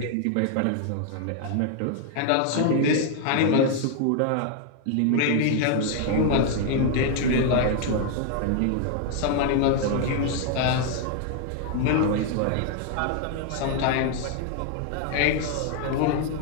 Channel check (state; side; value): different; both; correlation 0.00